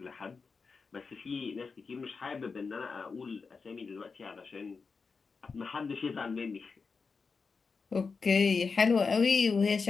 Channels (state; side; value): quieter; right; 4.8 dB